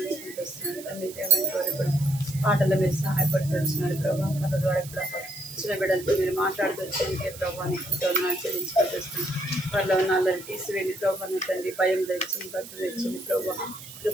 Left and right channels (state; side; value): noise; right; hiss, 15 dB below the sound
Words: వస్తున్నాను తండ్రి. దేవాన్ని కోరి కూడా పాటల్లో మీరు సహాయపడుతూ వచ్చినారు ప్రభా. కథ ద్వారా కూడా చిన్న బిడ్డలతో మీరు మాట్లాడుతూ వచ్చేందుకే ప్రభాని ఎంతో వందనాలు చెల్లించుకుంటూ వస్తున్నాను. వారిలో ఉన్న అల్లరి తీసివేయండి ప్రభాని తండ్రి. భయం తెచ్చింది, భక్తి తెచ్చింది ప్రభా.